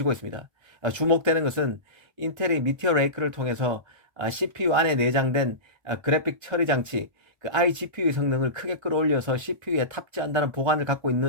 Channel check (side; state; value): left; late; 1.3 ms